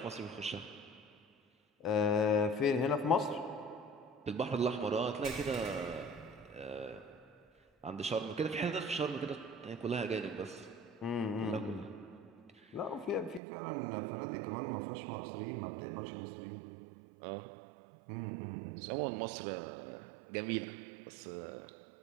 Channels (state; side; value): drops out; left; at 13.4 s